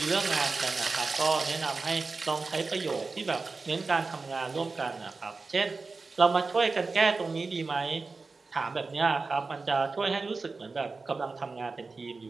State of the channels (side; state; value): left; quieter; 4.0 dB